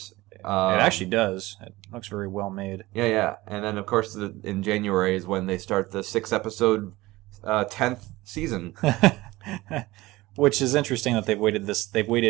It actually does. It looks very well made. Yeah. And then of course in January is when they start the 6-episode 10th season. Which is interesting that they've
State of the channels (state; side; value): quieter; left; 19.3 dB